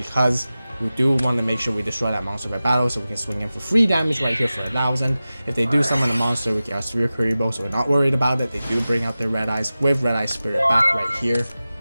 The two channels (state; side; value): inverted; both; correlation -0.96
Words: we do want to make sure we destroy that monster by battle, so we can swing in for free damage right here for 1,000. If they do summon a monster, we get our Sphere Kuriboh, so we're not worried about it. They do bring out their Red Eyes with Red Eye Spirit back right here.